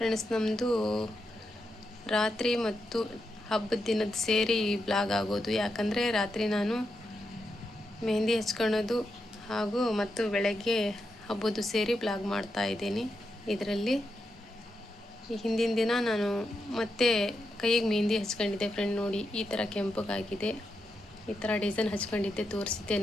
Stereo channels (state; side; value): normal; both; correlation 0.85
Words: ನಮ್ಮದು ರಾತ್ರಿ ಮತ್ತು ಹಬ್ಬದ ದಿನದ ಸೇರಿ ಬ್ಲಾಗ್ ಆಗೋದು. ಯಾಕಂದರೆ ರಾತ್ರಿ ನಾನು ಮೆಹಂದಿ ಹಚ್ಕೊಳ್ಳೋದು ಮತ್ತು ಬೆಳಗ್ಗೆ ಹಬ್ಬದ್ದು ಸೇರಿ ಬ್ಲಾಗ್ ಮಾಡ್ತಾ ಇದ್ದೀನಿ. ಇದರಲ್ಲಿ ಹಿಂದಿನ ದಿನ ನಾನು ಮತ್ತೆ ಕೈಗೆ ಮೆಹಂದಿ ಹಚ್ಕೊಂಡಿದ್ದೆ ಫ್ರೆಂಡ್. ನೋಡಿ, ಈ ಥರ ಕೆಂಪಗಾಗಿದೆ, ಈ ಥರ ಡಿಸೈನ್ ಹಚ್ಕೊಂಡಿದ್ದೆ, ತೋರಿಸಿದ್ದೆ